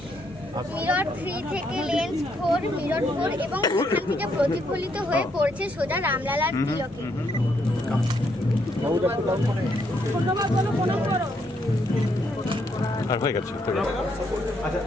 Mirror 3 থেকে লেন্স 4 মিরর 4 এবং এখান থেকে প্রতিফলিত হয়ে পড়ছে সোজা রামলালার তিলকে। আর হয়ে গেছে। আচ্ছা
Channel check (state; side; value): normal; both; correlation 0.74